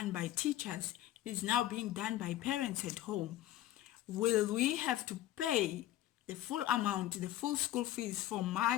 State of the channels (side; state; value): right; quieter; 13.9 dB